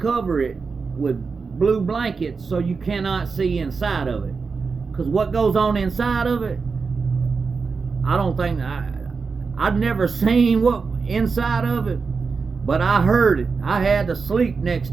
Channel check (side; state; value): left; quieter; 4.9 dB